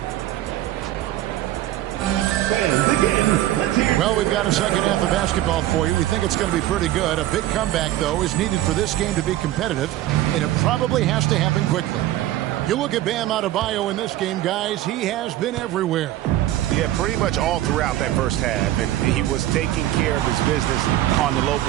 Well, we've got a second half of basketball for you. We think it's going to be pretty good. A big comeback, though, is needed for this game to be competitive, and it probably has to happen quickly. You look at Bam Adebayo in this game, guys, he has been everywhere. Yeah, pretty much all throughout that first half, and he was taking care of his business on the low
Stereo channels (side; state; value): left; quieter; 14.2 dB